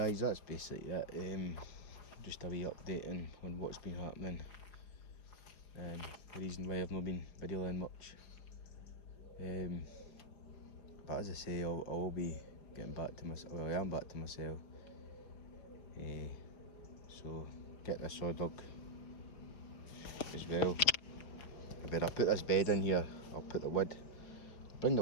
that's basically it. Just a wee updating on what's been happening. The reason why I've not been videoing much. But as I say, I will be getting back to myself. Well, I am back to myself. So get this saw dug as well. I better put this bed in here. I'll put the wood. Bring the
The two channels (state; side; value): late; right; 5.3 ms